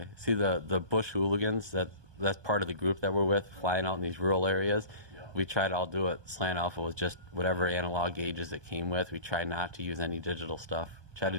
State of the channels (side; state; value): left; late; 1.2 ms